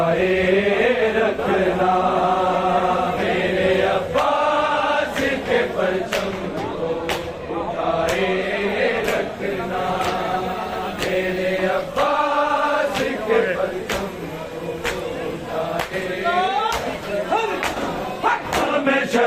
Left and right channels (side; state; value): both; identical; correlation 1.00